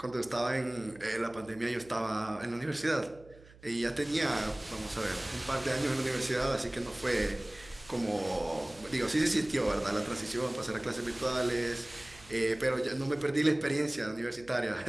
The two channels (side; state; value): right; noise; hum, 23 dB below the sound